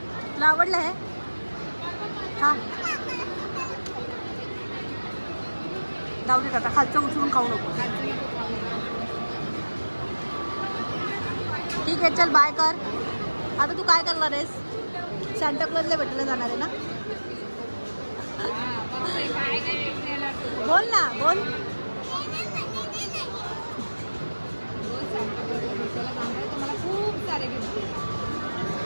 तुला आवडलं हे? हां जाऊ दे आता खालचं उचलून खाऊ नको. ठीक आहे चल बाय कर. आता तू काय करणार आहेस? सांताक्लॉजला भेटायला जाणार आहे ना? बोल ना बोल. मला खूप सारे गिफ्ट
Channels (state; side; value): inverted; both; correlation -1.00